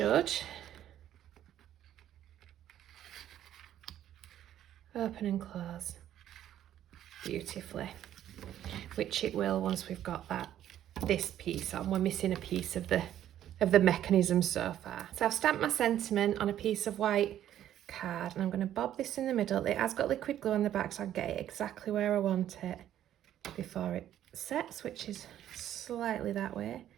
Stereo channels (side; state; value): left; quieter; 11.5 dB